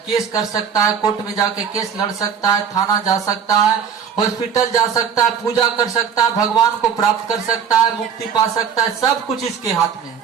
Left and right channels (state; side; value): quieter; left; 7.4 dB